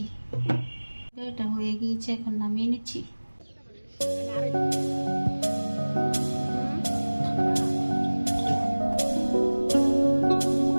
এটা হয়ে গিয়েছে, এখন নামিয়ে নিচ্ছি।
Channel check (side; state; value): both; inverted; correlation -1.00